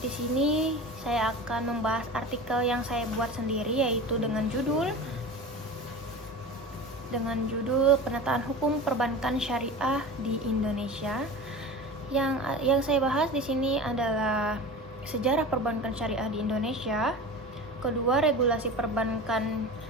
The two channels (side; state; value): both; normal; correlation 0.32